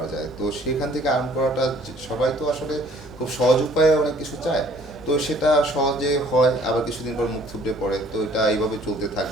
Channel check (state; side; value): noise; left; hum, 21 dB below the sound